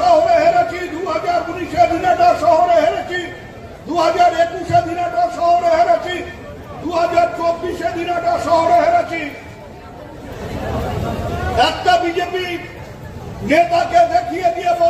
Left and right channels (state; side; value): identical; both; correlation 1.00